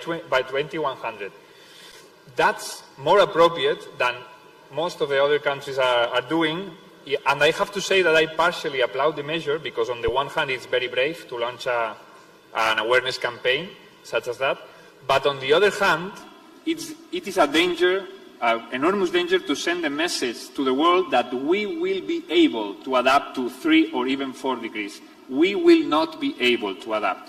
That's more appropriate than most of the other countries are doing. And I have to say that I partially applaud the measure because on the one hand it's very brave to launch an awareness campaign such as that. But on the other hand, it is a danger, an enormous danger to send a message to the world that we will be able to adapt to 3 or even 4 degrees. We will not be able to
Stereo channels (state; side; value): identical; both; correlation 1.00